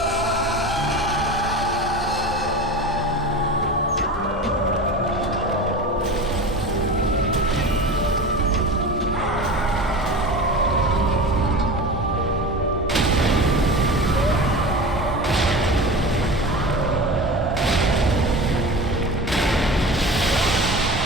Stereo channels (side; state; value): both; normal; correlation 0.31